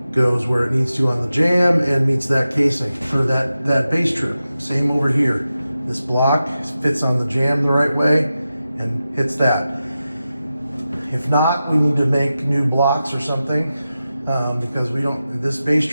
goes where it needs to on the jamb and meets that casing for that base trim. Same over here. This block fits on the jamb the right way and hits that. If not, we need to make new blocks or something, because this base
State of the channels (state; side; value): inverted; both; correlation -0.92